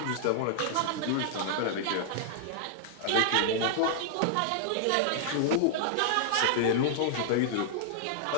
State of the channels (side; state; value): both; different; correlation -0.01